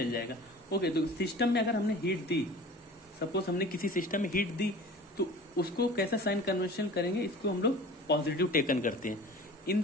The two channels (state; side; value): normal; both; correlation 0.41